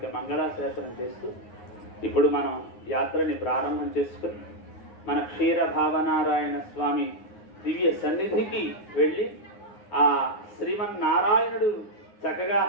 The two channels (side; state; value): right; late; 9.7 ms